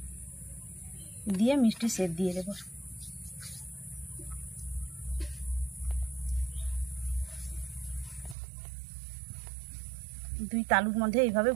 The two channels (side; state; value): left; drops out; at 8.3 s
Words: দিয়ে মিষ্টি সেট দিয়ে দেব। দুই তালুর মধ্যে এইভাবে